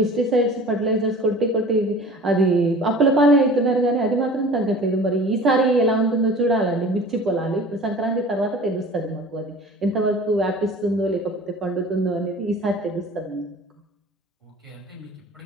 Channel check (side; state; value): both; normal; correlation 0.42